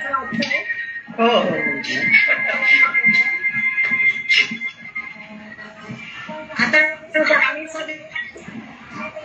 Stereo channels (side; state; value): both; identical; correlation 1.00